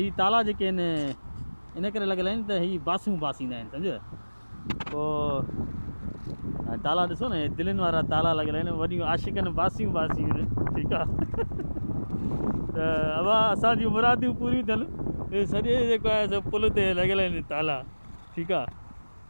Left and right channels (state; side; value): inverted; both; correlation -1.00